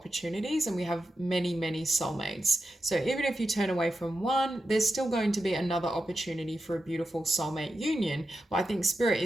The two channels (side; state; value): both; normal; correlation 0.89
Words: and we have many, many soulmates. So even if you turn away from one, there's still going to be another opportunity for a beautiful soulmate union. But I think Spirit